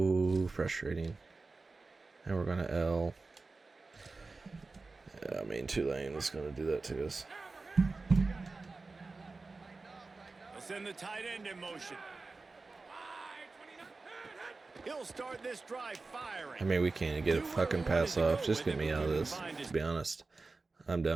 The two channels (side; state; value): left; quieter; 3.8 dB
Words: frustrating. And we're gonna L. Yeah, I mean, Tulane is gonna do that to us. They'll send the tight end in motion. He'll start this drive firing. I mean, we can't get a fucking pass off. Just get me out of this, to be honest. I'm